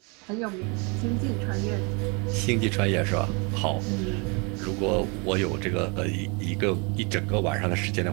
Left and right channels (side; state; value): left; quieter; 31.6 dB